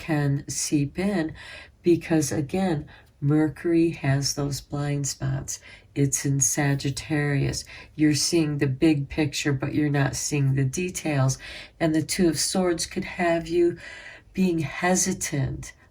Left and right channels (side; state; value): both; identical; correlation 1.00